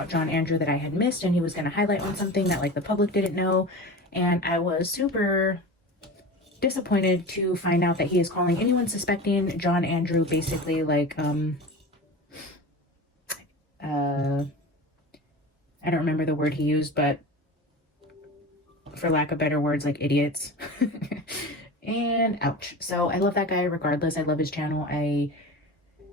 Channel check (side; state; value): both; normal; correlation 0.31